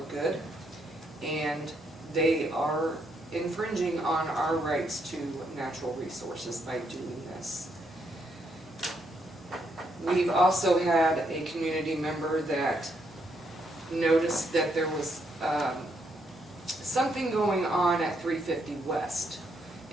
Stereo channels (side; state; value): both; normal; correlation 0.76